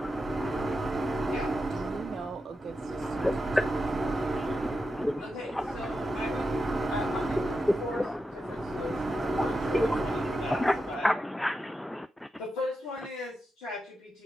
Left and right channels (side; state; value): both; normal; correlation 0.88